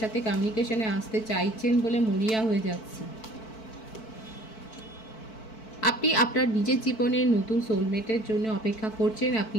কমিউনিকেশনে আসতে চাইছেন বলে মরিয়া হয়ে যাচ্ছে। আপনি আপনার নিজের জীবনে নতুন সোলমেটের জন্য অপেক্ষা করছেন, আপনি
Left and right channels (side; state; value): right; late; 4.6 ms